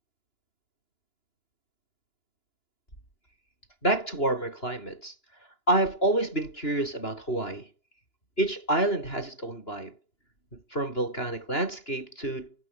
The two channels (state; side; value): late; right; 2.9 ms